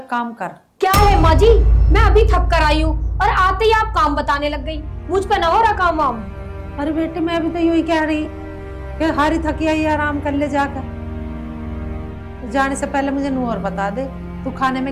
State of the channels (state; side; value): identical; both; correlation 1.00